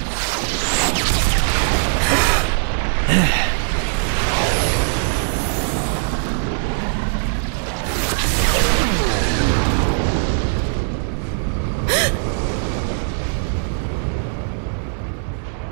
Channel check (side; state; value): left; silent; digital silence